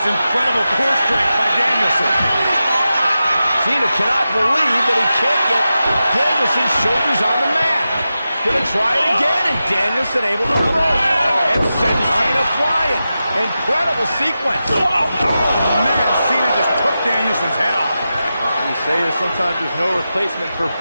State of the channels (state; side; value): inverted; both; correlation -0.92